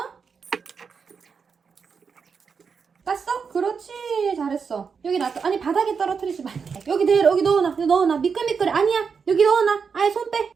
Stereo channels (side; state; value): left; quieter; 5.8 dB